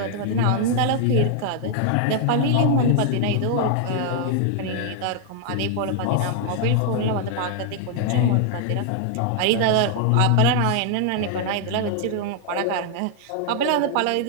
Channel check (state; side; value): different; both; correlation 0.00